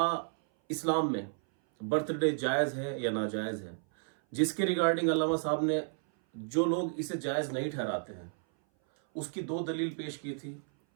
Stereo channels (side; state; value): left; silent; 56 dB below the other